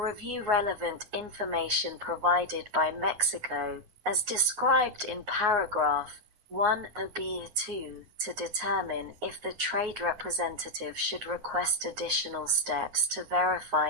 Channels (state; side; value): late; left; 9.5 ms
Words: relevant information provided by Mexico as described in paragraph 1b(2) to determine if the trade representative should request additional steps to